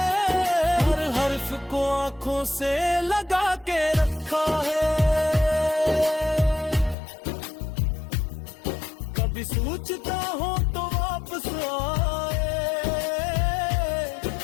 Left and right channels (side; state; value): right; drops out; at 7.0 s